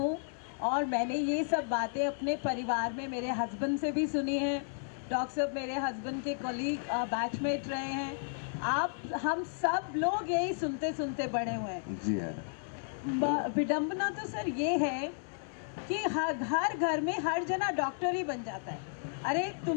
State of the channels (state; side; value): silent; right; digital silence